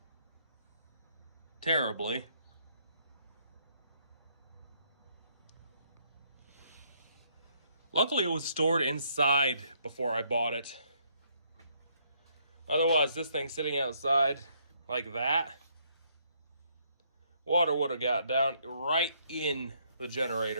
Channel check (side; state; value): both; inverted; correlation -0.70